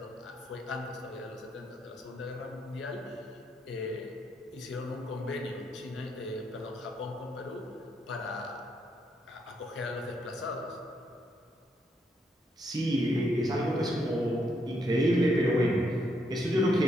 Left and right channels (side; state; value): both; normal; correlation 0.76